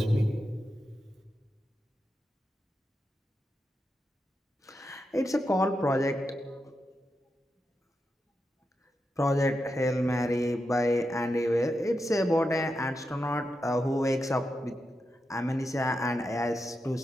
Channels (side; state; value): both; normal; correlation 0.87